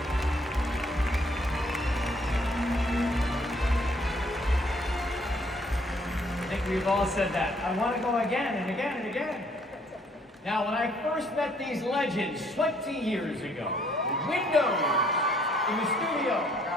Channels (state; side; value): normal; both; correlation 0.64